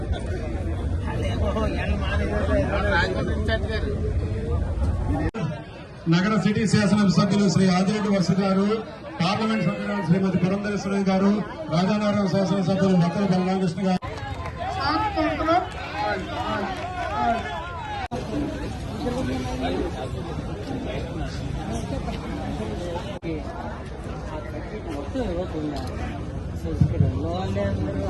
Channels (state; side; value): identical; both; correlation 1.00